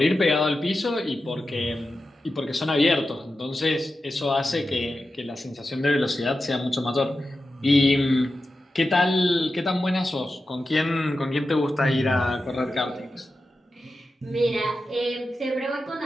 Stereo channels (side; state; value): both; normal; correlation 0.91